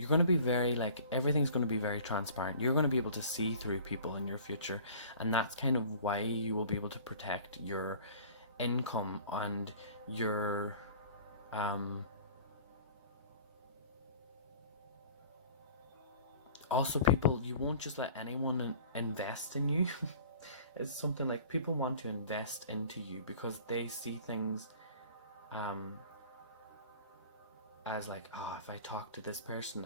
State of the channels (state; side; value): inverted; both; correlation -0.46